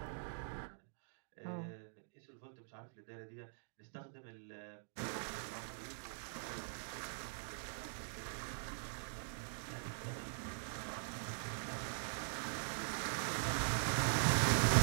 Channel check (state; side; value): silent; left; digital silence